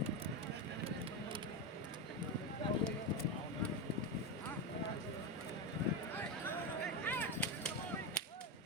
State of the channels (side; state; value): both; normal; correlation 0.12